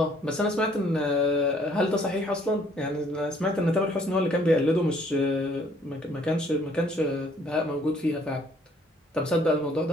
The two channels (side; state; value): both; normal; correlation 0.62